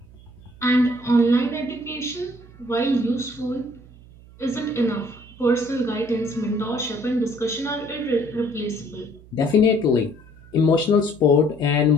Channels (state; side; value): noise; right; hum, 22 dB below the sound